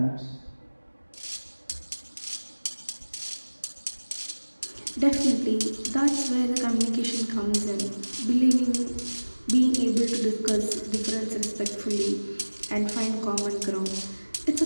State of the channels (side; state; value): both; inverted; correlation -1.00